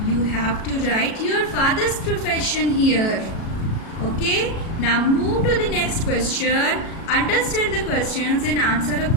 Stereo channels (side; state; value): right; late; 37 ms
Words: You have to write your father's profession here. Okay, now move to the next question. Understand the questions and answer